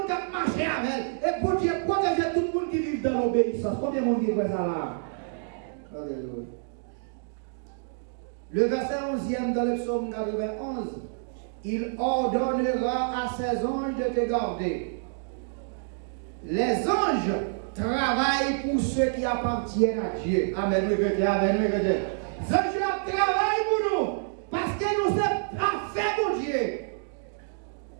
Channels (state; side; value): silent; left; digital silence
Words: qui marche avec elle. Et bon Dieu protège tout le monde qui vit dans l'obéissance. Combien de monde qui fait ça là? Alléluia. Le verset 11e dans le psaume 91. Il ordonnera à ses anges de te garder. Les anges travaillent pour ceux qui appartiennent à Dieu. Amen, oui, amen, oui, les anges travaillent pour nous parce que nous sommes parfaits pour Dieu.